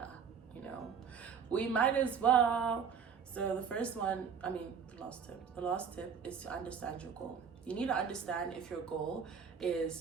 you know, we might as well. So the last tip is to understand your goal. You need to understand if your goal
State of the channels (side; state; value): left; quieter; 6.8 dB